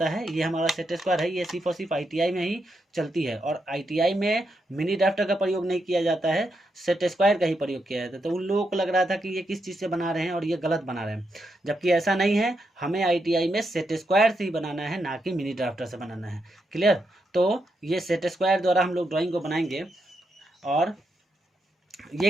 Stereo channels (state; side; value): normal; both; correlation 0.82